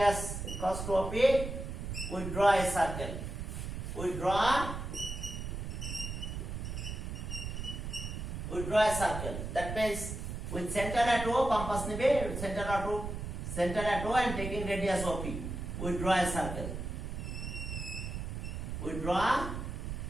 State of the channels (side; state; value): right; noise; rumble, 5 dB below the sound